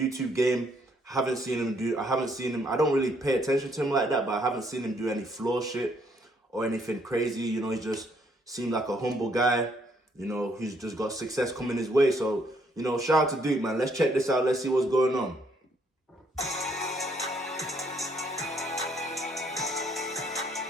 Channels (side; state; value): both; normal; correlation 0.69